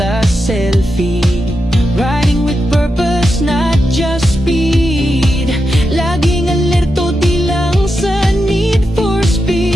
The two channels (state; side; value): normal; both; correlation 0.87